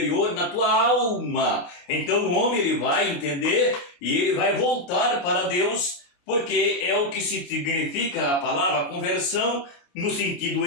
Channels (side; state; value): right; late; 29 ms